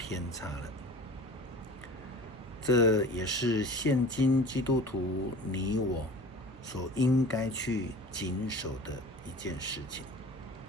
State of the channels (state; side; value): normal; both; correlation 0.41